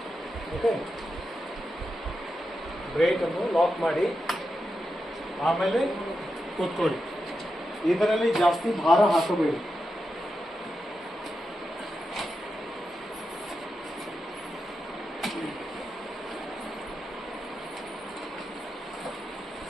ಓಕೆ, ಬ್ರೇಕನ್ನು ಲಾಕ್ ಮಾಡಿ ಆಮೇಲೆ ಕೂತ್ಕೊಳ್ಳಿ. ಇದರಲ್ಲಿ ಜಾಸ್ತಿ ಭಾರ ಹಾಕಬೇಡಿ.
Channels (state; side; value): normal; both; correlation 0.88